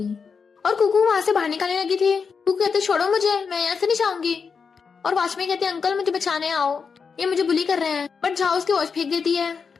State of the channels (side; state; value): right; quieter; 5.7 dB